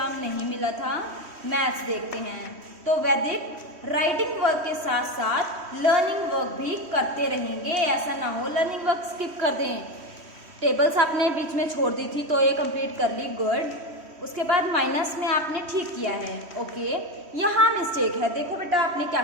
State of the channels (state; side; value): late; left; 3.1 ms